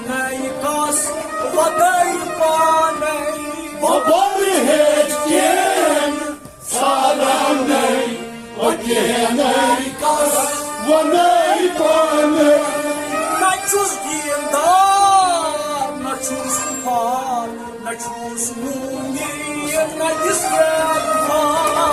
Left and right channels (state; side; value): identical; both; correlation 1.00